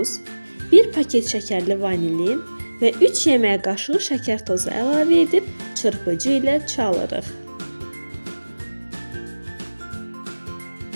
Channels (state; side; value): inverted; both; correlation -1.00